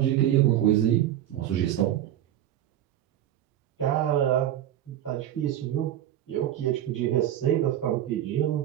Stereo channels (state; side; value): quieter; left; 11.8 dB